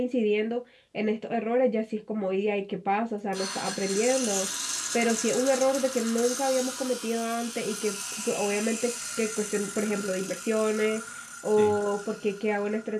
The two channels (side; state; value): both; identical; correlation 1.00